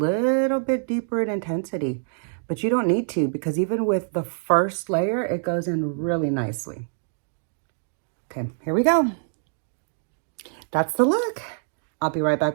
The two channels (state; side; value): silent; left; 62 dB below the other